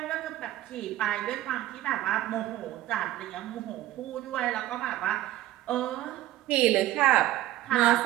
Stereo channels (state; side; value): quieter; left; 14.7 dB